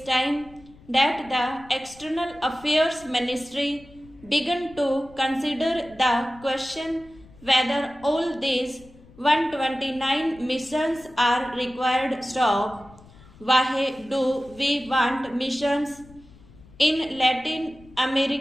time that the External Affairs Ministry began to consider the question whether all these 129 missions are required stock. Why do we want missions in Latin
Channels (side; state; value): left; noise; rumble, 23 dB below the sound